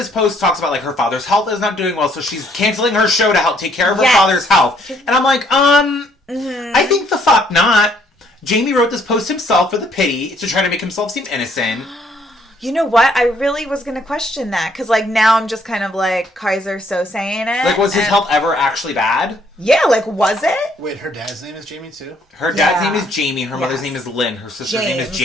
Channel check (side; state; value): both; normal; correlation 0.66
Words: post talks about like her father's health is not doing well, so she's canceling her show to help take care of her father's health. And I'm like, I think the fuck not. Jamie wrote this post himself for the pity to try to make himself seem innocent. You know what? I really was going to question that. Because, like, now I'm just kind of like, Kaiser so saying it. Like, was his health ever actually bad? Yeah, like, was it? Wait, her dad's name is Jamie, too? Her dad's name is Jamie. Her mother's name is Lynn. Her sister's name is